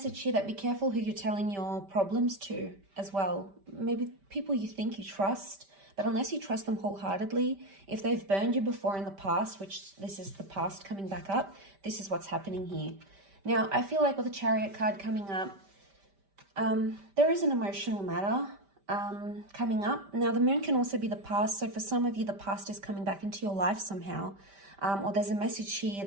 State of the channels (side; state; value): left; late; 5.1 ms